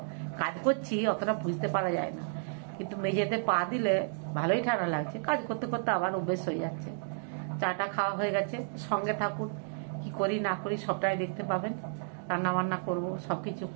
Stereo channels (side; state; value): left; silent; digital silence